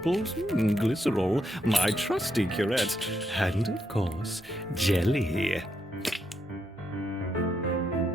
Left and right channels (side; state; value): both; normal; correlation 0.80